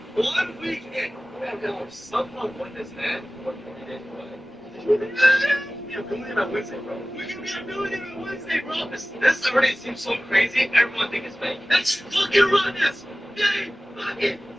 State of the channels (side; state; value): both; normal; correlation 0.98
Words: 1 week in. Somehow won this man for 20 days away. Yeah, we're millionaire on Wednesday, bro. We're gonna be a millionaire on Wednesday, bro. This already seems so crazy. Everyone thinks it's fake. Let's fucking run this. Day fucking